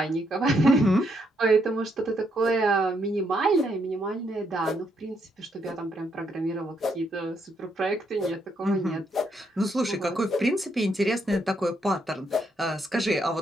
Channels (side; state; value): both; normal; correlation 0.75